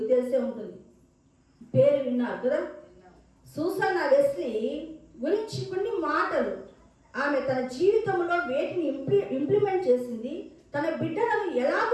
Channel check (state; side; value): identical; both; correlation 1.00